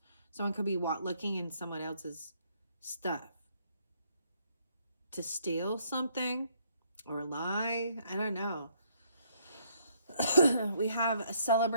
Someone could be looking in someone else's stuff to steal something or lie. I don't know. We have a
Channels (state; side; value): inverted; both; correlation -0.68